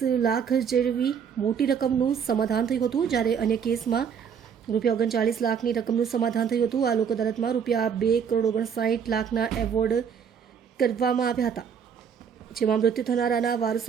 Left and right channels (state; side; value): quieter; left; 7.3 dB